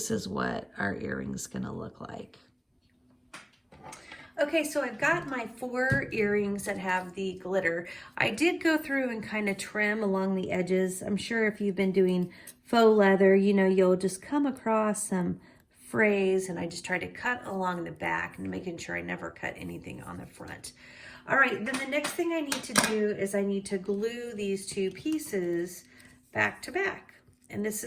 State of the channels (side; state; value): both; identical; correlation 1.00